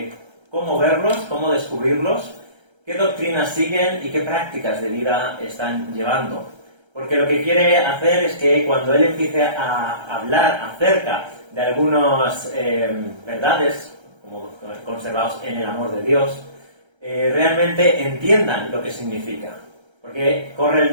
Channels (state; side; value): late; left; 1.3 ms